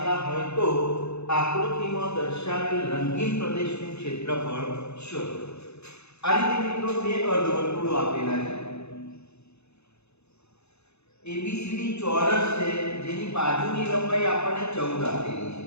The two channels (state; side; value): late; right; 0.80 ms